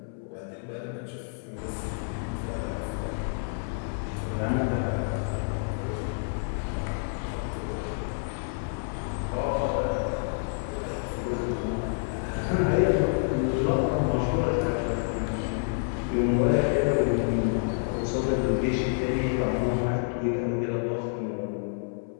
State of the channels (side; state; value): right; silent; 59 dB below the other